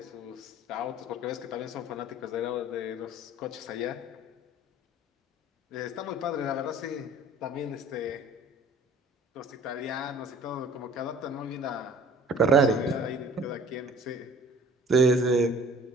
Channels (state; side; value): normal; both; correlation 0.50